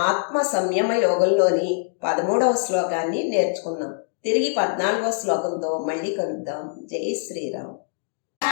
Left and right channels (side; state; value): right; silent; digital silence